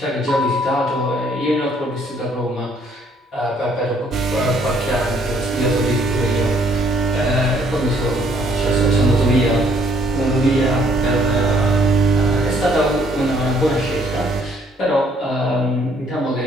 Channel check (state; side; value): normal; both; correlation 0.64